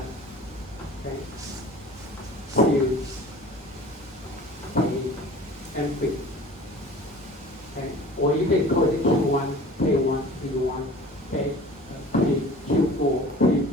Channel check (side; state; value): both; normal; correlation 0.43